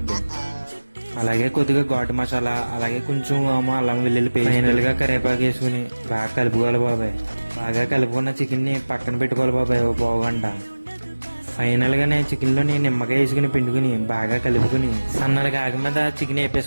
అలాగే కొద్దిగా ఘాటు మసాలా, అలాగే కొంచెం అల్లం వెల్లుల్లి పేస్ట్, ఫైనల్ గా కరివేపాకు వేసుకుని బాగా కలుపుకోవాలి బాబాయ్. బాగా కలుపుకున్న చికెన్ ని పక్కన పెట్టుకోవాలి బాబాయ్ ఓ పావు గంట. ఫైనల్ గానే చికెన్ లోని నిమ్మకాయ వేసుకుని పిండుకుని బాగా కలుపుకుని సన్నగా ఆగి మీద చికెన్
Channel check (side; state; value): both; inverted; correlation -1.00